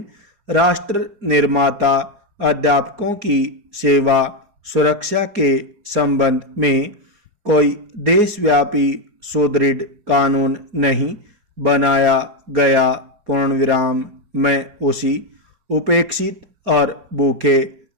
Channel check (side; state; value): left; late; 4.8 ms